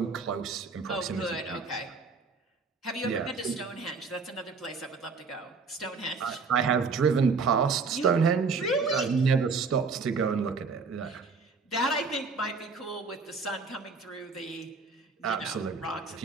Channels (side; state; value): left; quieter; 4.6 dB